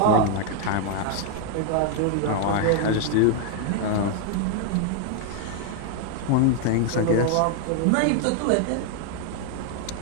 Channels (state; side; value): different; both; correlation 0.00